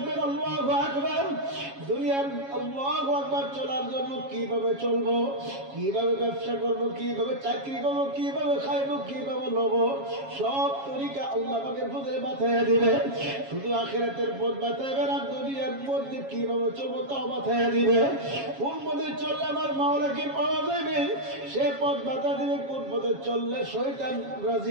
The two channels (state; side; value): late; left; 7.3 ms